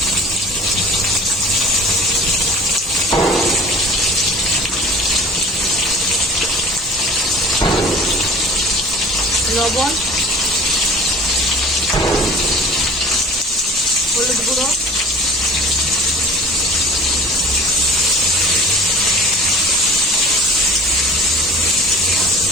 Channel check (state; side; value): normal; both; correlation 0.43